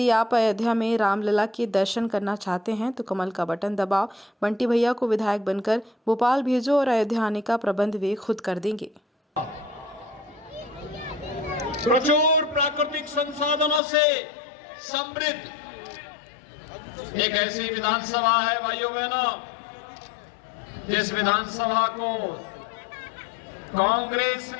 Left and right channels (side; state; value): right; drops out; at 13.8 s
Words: आप अयोध्या में रामलला के दर्शन करना चाहते हैं तो कमल का बटन दबाओ, बंटी भैया को विधायक बनकर भोपाल भेजो और अयोध्या आने का प्रबंध वे खुद कर देंगे। प्रचुर प्राकृतिक संसाधनों से समृद्ध एक ऐसी विधानसभा है भाइयों बहनों, जिस विधानसभा को कांग्रेस